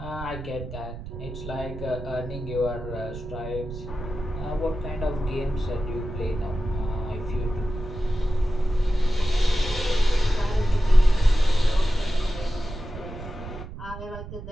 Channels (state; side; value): noise; right; rumble, 11 dB below the sound